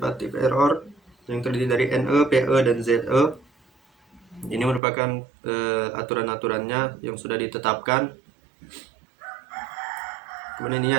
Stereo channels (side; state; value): left; drops out; at 4.8 s